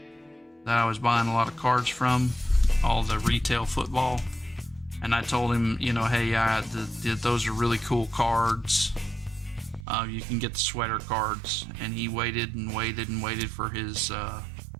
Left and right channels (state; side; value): drops out; left; at 9.9 s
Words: that I was buying a lot of cards from, all the retail football, and I told him, you know, hey, those are really cool cards. You can get the sweater cards, and he waited and waited and waited for his